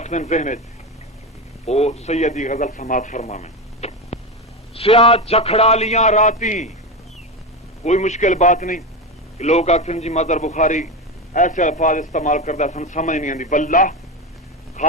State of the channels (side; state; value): both; normal; correlation 0.17